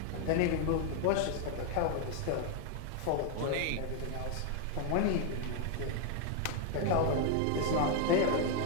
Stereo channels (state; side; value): different; both; correlation 0.01